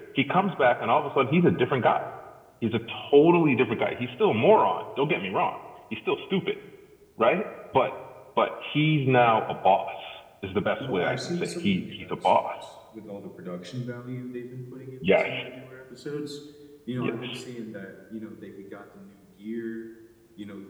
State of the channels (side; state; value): both; identical; correlation 1.00